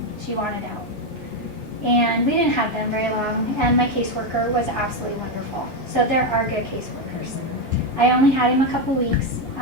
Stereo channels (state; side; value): normal; both; correlation 0.07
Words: She wanted out. And we didn't have them very long, and my caseworker was absolutely wonderful. So there are good caseworkers. I only had him a couple weeks.